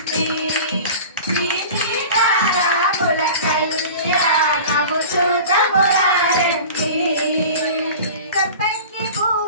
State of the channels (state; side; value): inverted; both; correlation -0.37